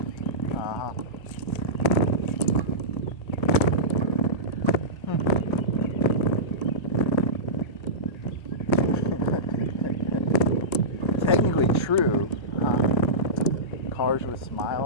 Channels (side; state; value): right; late; 1.3 ms